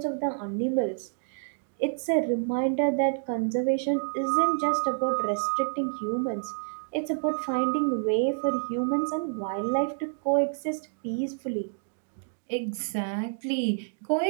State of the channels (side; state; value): left; silent; digital silence